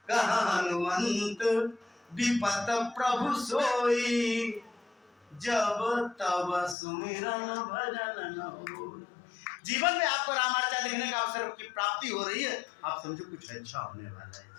कहा हनुमंत विपत प्रभु सोई, जब तब सुमिरन भजन न होई। जीवन में आपको रामार्चा देखने का अवसर की प्राप्ति हो रही है, आप समझो कुछ अच्छा होने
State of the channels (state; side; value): drops out; right; at 6.8 s